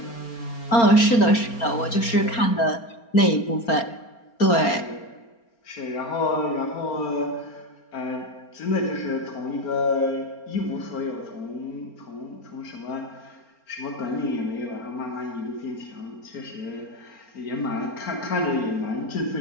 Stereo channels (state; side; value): late; right; 4.3 ms